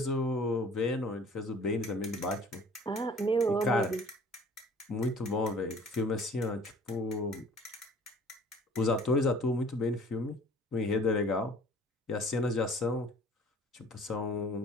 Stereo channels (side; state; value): both; normal; correlation 0.50